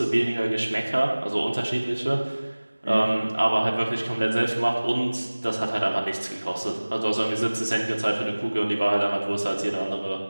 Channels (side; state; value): both; inverted; correlation -1.00